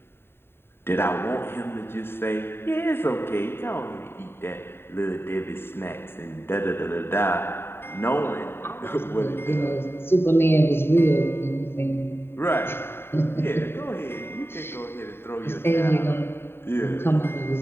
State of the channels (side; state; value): right; late; 0.11 ms